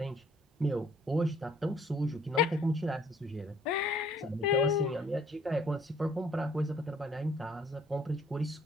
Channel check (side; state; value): both; normal; correlation 0.60